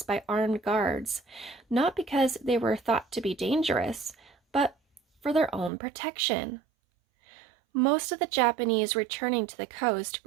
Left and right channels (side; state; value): left; drops out; at 5.7 s